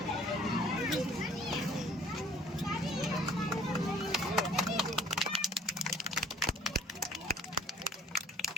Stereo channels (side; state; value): both; normal; correlation 0.55